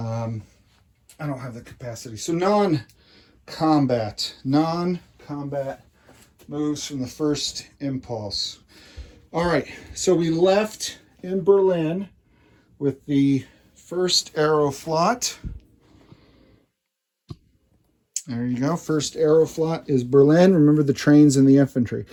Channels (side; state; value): both; identical; correlation 1.00